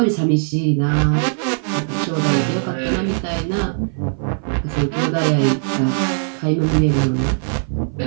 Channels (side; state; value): left; silent; 56 dB below the other